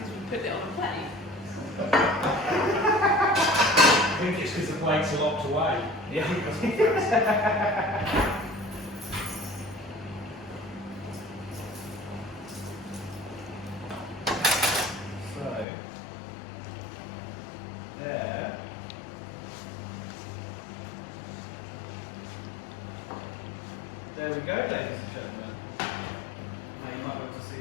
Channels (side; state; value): right; drops out; at 15.7 s